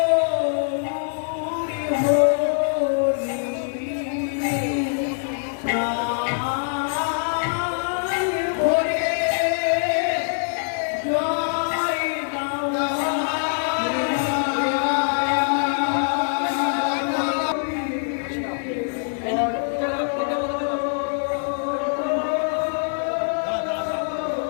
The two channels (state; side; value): silent; right; 61 dB below the other